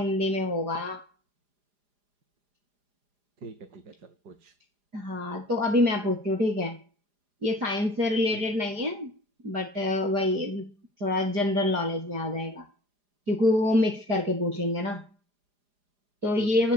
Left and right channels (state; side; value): late; left; 4.9 ms